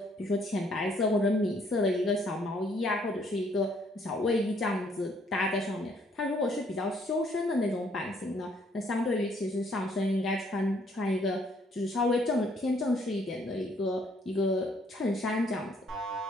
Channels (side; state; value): both; normal; correlation 0.66